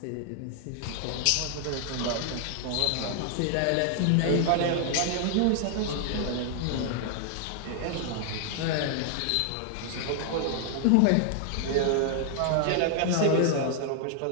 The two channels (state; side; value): different; both; correlation -0.01